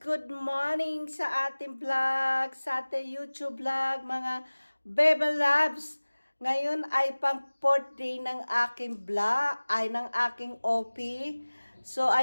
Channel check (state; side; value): inverted; both; correlation -1.00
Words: Good morning sa ating vlog, sa ating YouTube vlog, mga Bebe Loves. Ngayon ay pang 4th day ng aking vlog, ay ng aking OP. So,